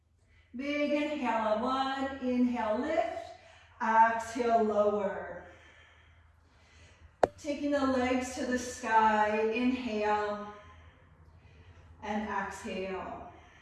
big inhale on 1, inhale, lift, exhale, lower. Taking the legs to the sky, inhale and exhale.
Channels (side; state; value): both; identical; correlation 1.00